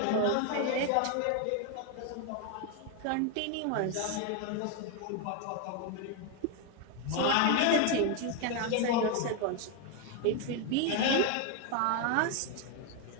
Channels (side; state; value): both; different; correlation 0.01